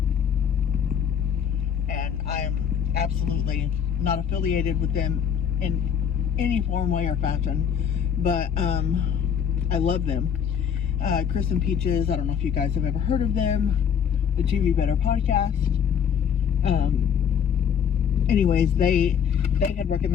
and I'm absolutely not affiliated with them in any form, way, or fashion, but I love them. Chris and Peaches, I don't know if you guys have ever heard of them, the TV Better podcast. Anyways, they had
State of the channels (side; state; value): right; quieter; 7.8 dB